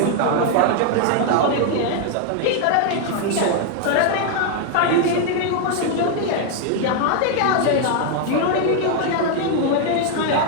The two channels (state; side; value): different; both; correlation 0.00